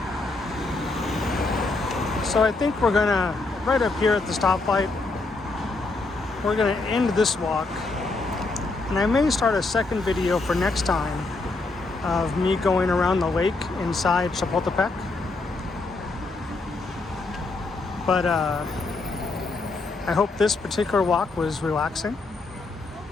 So I think we're gonna, right up here at the stoplight, we're gonna end this walk. And I may start a second video for next time of me going around the lake inside Chapultepec. But I hope this particular walk was relaxing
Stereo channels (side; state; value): right; quieter; 3.5 dB